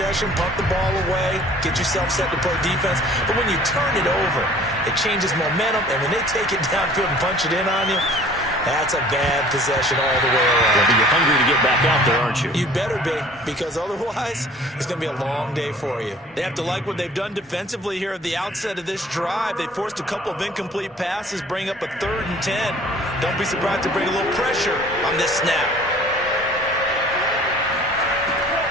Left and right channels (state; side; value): normal; both; correlation 0.50